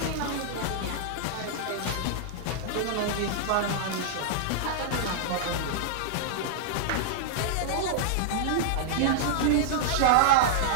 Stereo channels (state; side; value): different; both; correlation -0.01